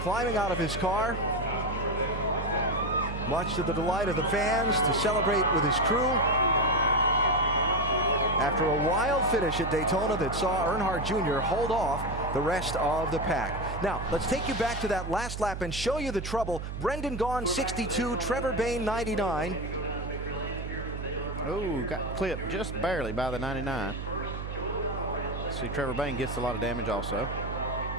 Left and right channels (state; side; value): noise; right; hum, 6 dB below the sound